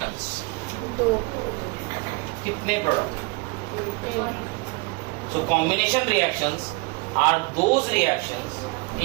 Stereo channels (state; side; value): quieter; left; 28.3 dB